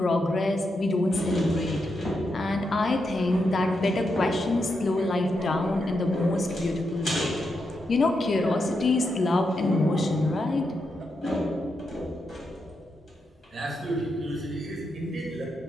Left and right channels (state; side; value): normal; both; correlation 0.84